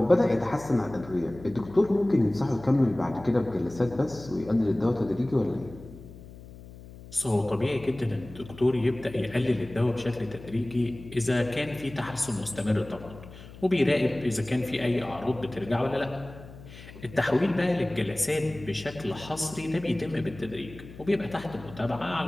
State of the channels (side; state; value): left; noise; hum, 17 dB below the sound